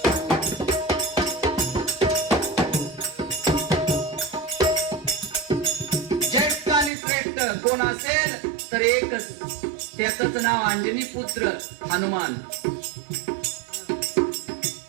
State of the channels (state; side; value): drops out; left; at 6.9 s